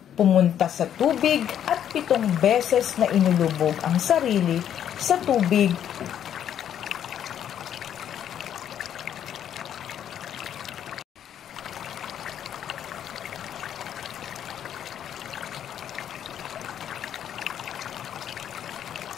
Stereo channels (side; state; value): right; quieter; 9.8 dB